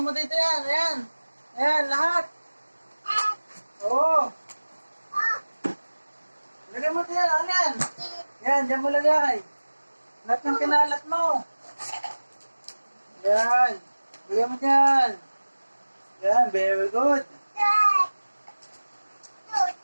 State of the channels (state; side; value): inverted; both; correlation -1.00